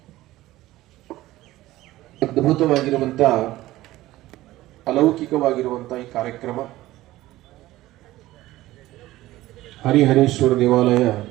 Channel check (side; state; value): left; quieter; 16.5 dB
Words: ಅದ್ಭುತವಾಗಿರುವಂತ ಅಲೌಕಿಕವಾಗಿರುವಂತ ಈ ಕಾರ್ಯಕ್ರಮ ಹರಿಹರೇಶ್ವರ ದೇವಾಲಯ